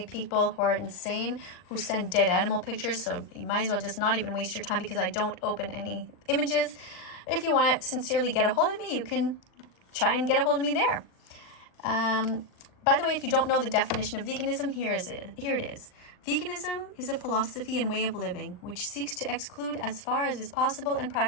people who are insane who send dead animal pictures. So you might as well just not even waste your time because I don't open any images. If you want to sincerely get a hold of me, you can try and get a hold of me there. By the way, if you don't know the definition of veganism, here it is. Veganism is a philosophy and way of living which seeks to exclude as far as is possible and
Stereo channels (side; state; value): right; late; 39 ms